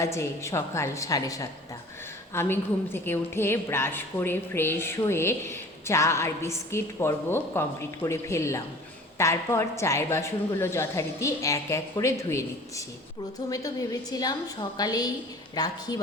সকাল 7:30। আমি ঘুম থেকে উঠে ব্রাশ করে ফ্রেশ হয়ে চা আর বিস্কিট পর্ব কমপ্লিট করে ফেললাম। তারপর চায়ের বাসনগুলো যথারীতি এক এক করে ধুয়ে নিচ্ছি। প্রথমে তো ভেবেছিলাম সকালেই রাখি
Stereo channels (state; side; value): normal; both; correlation 0.44